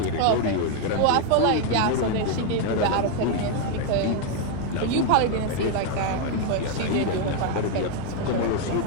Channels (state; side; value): different; both; correlation 0.01